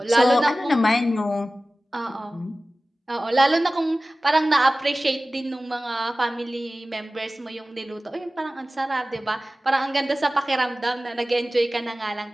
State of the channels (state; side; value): normal; both; correlation 0.97